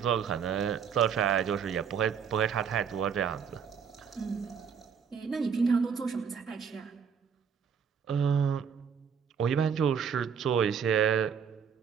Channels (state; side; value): quieter; left; 7.0 dB